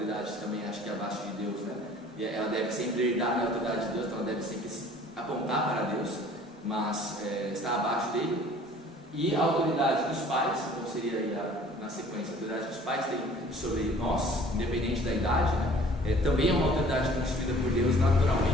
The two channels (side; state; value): both; normal; correlation 0.51